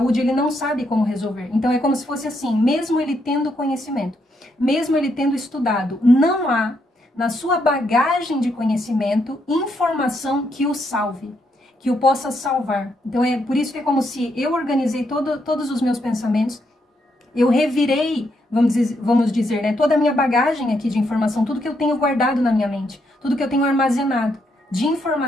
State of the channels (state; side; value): normal; both; correlation 0.77